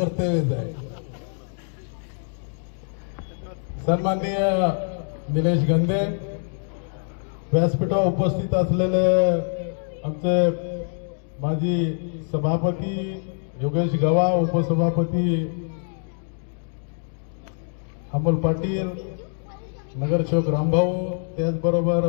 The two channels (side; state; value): right; silent; digital silence